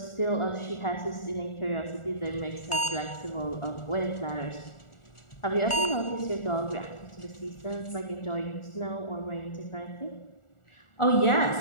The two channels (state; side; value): late; right; 1.4 ms